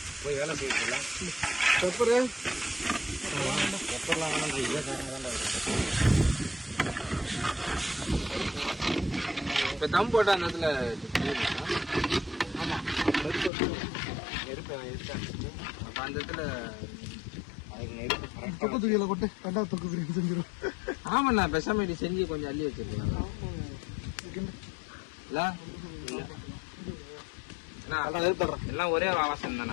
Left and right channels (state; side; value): drops out; right; at 13.5 s